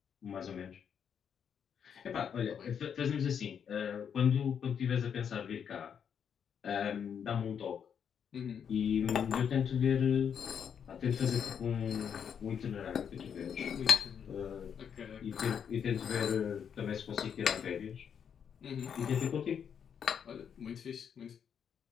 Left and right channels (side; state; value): right; quieter; 7.7 dB